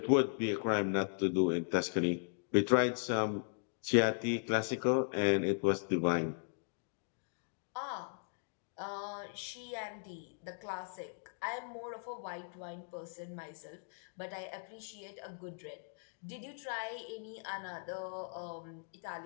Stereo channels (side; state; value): right; silent; digital silence